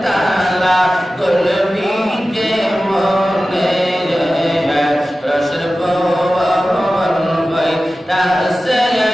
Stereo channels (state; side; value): normal; both; correlation 0.95